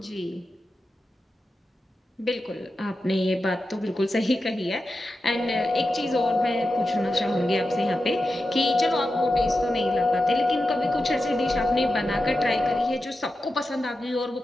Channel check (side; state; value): both; normal; correlation 0.91